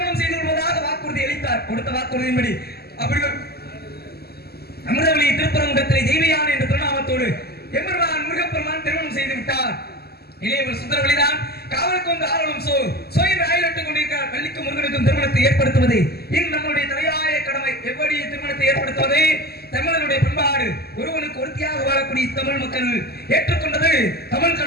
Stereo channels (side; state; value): right; late; 0.46 ms